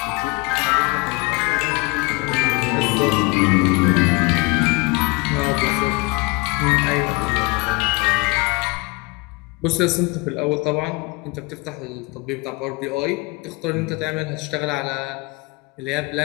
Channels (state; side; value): quieter; right; 25.7 dB